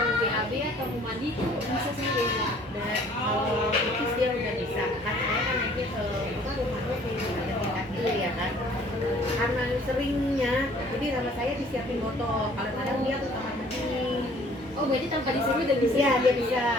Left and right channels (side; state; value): both; normal; correlation 0.55